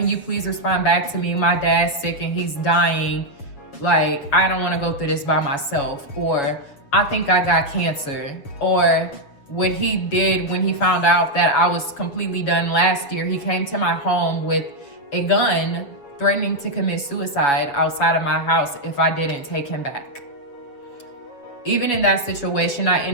you please respond back to me? My dad's sick and he's dying. Like, I don't want to go through this by myself. Or I think I got cancer. Or what he did when he found out that I was completely done last year, he came to my home with a gun threatening to commit suicide outside of my house if I didn't take him back. Even in that situation, I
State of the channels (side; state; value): right; late; 7.1 ms